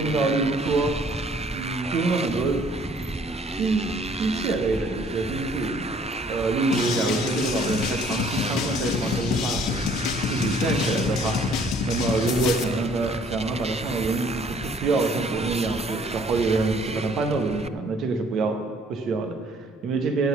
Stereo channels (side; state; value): both; normal; correlation 0.59